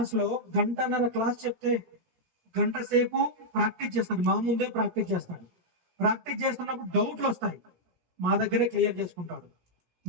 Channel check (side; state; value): left; late; 17 ms